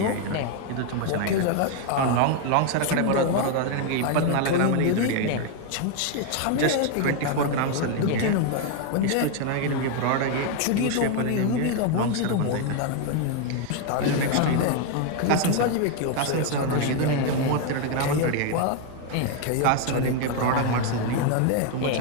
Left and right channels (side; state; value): both; different; correlation 0.01